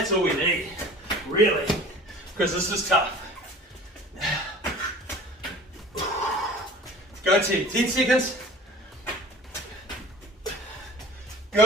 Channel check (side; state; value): both; normal; correlation 0.46